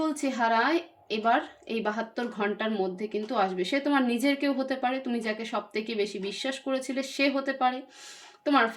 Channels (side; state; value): both; identical; correlation 1.00